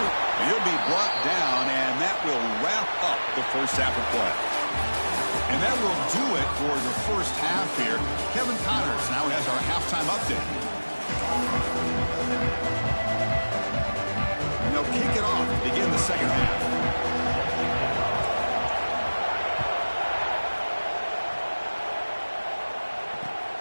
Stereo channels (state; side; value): inverted; both; correlation -1.00